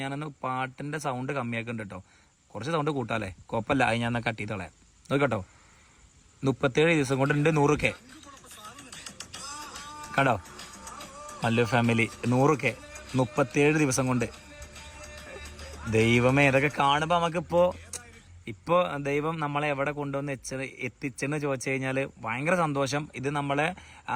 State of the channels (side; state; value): both; identical; correlation 1.00